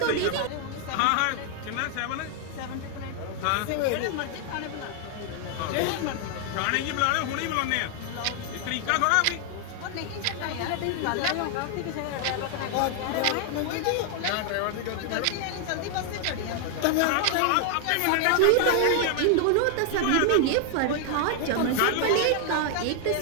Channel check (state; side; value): different; both; correlation 0.00